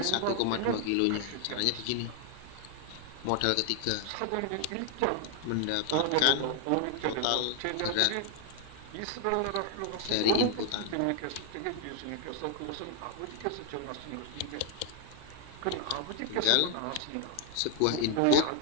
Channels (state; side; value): different; both; correlation 0.00